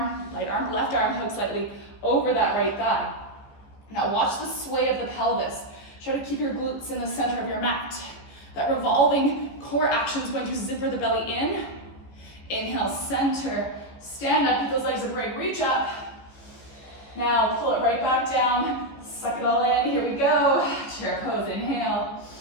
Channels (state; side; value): late; right; 14 ms